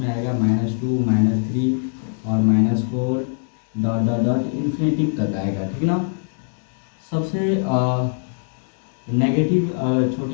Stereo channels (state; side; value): silent; right; digital silence